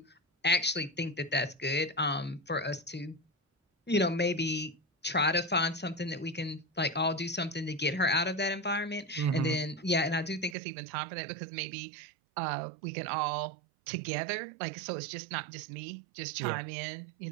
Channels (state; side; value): drops out; left; at 10.6 s